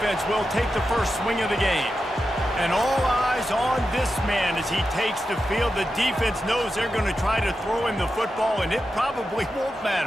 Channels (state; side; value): normal; both; correlation 0.90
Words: will take the first swing of the game. And all eyes on this man as he takes the field. The defense knows they're going to try to throw him the football, and it probably won't